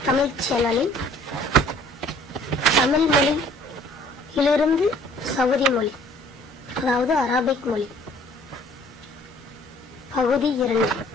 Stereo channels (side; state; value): both; normal; correlation 0.56